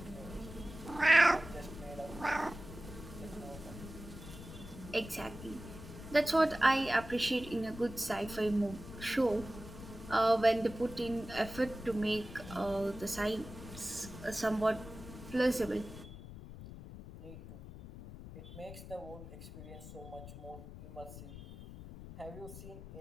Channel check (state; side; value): noise; left; rumble, 13 dB below the sound